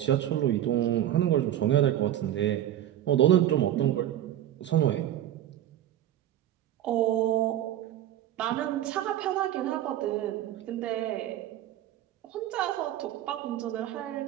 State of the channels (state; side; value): quieter; left; 12.0 dB